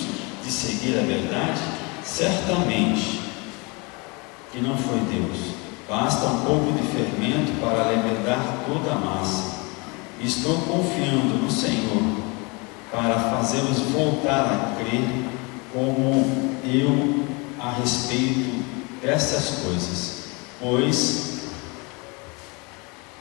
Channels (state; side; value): quieter; right; 29.0 dB